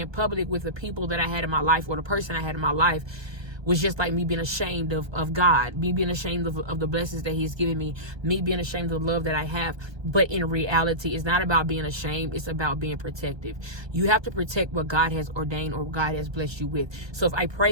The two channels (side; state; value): left; late; 1.2 ms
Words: public with the people that I had in my life, or the person I had in my life, was just like me being ashamed of God, me being ashamed of the blessings that he's given me being ashamed of the love that I have. But in reality, it's not about being ashamed. It's about being protective. You have to protect what God has ordained or God has blessed you with. So if I